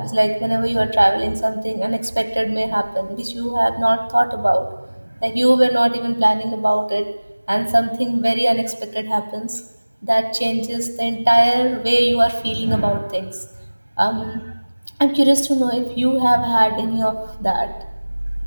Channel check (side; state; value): both; inverted; correlation -1.00